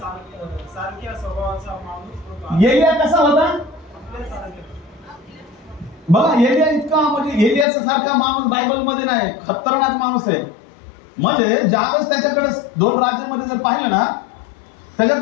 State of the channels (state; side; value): drops out; right; at 7.7 s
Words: स्वभावाचा माणूस होता. एलिया कसा होता बघा. एलिया इतका म्हणजे एलियाचा सारखा माणूस बायबल मध्ये नाही, खतरनाक माणूस आहे. म्हणजे ज्यावेळेस त्याच्याकडे 2 राज्यामध्ये जर पाहिलं ना,